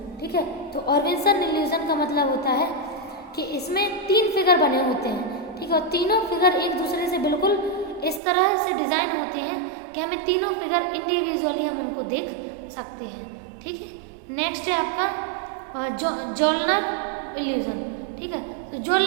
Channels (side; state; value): left; drops out; at 8.2 s